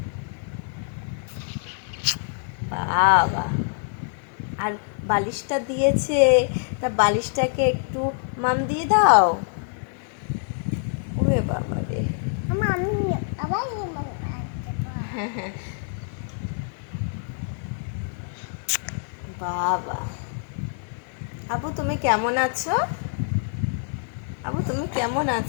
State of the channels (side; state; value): right; silent; digital silence